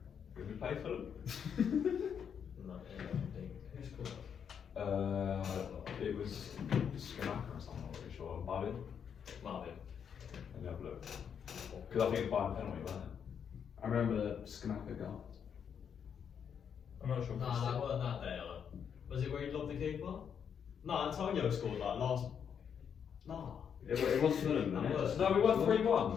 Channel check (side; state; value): right; quieter; 7.6 dB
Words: did we play Fulham? No, yeah, I think. Who scored? It was Schumacher or something, I'm not really sure. Marvin? Marvin. Let me have a look. Because I think it's by a penalty, wasn't it? I remember the Schumacher goal. I'm not sure if No, it's that weren't that day. Was it where he lobbed the keeper? No, Antonio scored like last. No. It was Fulham, That wasn't it? was- No, we won